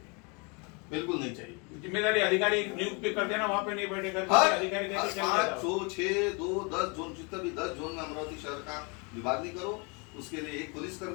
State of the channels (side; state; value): right; quieter; 32.0 dB